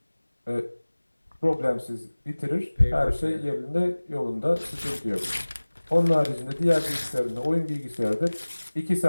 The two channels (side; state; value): both; inverted; correlation -1.00